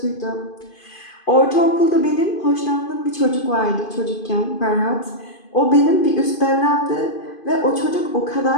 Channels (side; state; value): right; late; 2.5 ms